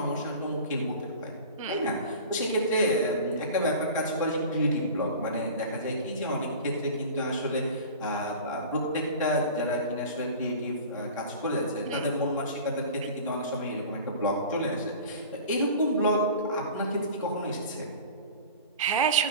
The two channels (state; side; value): inverted; both; correlation -0.37